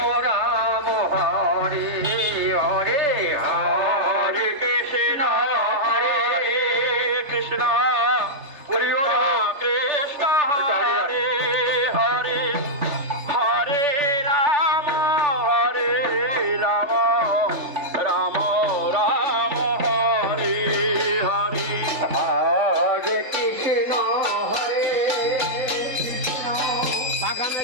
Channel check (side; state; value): left; late; 3.4 ms